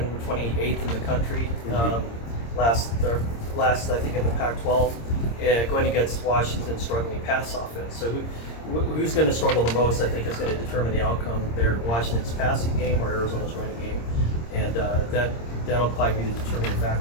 in the country. Last I think in the Pac-12, going against Washington's struggling pass offense. So who's going to struggle the most, I think, is going to determine the outcome there. Washington's passing game or Arizona's running game, and that'll probably be the determining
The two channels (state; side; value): late; right; 26 ms